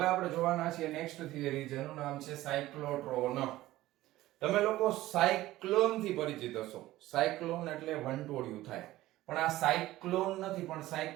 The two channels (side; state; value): left; quieter; 16.2 dB